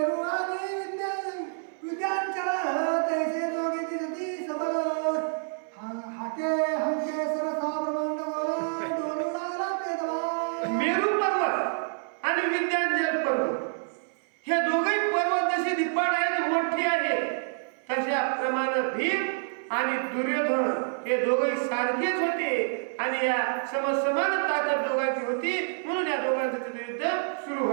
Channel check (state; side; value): silent; left; 59 dB below the other